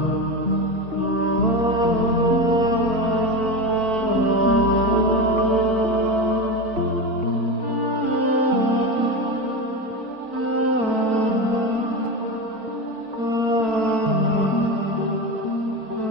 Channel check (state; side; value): late; left; 4.5 ms